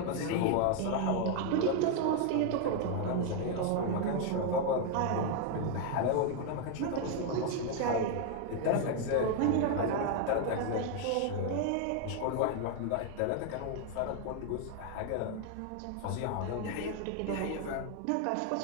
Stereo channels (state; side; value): different; both; correlation 0.01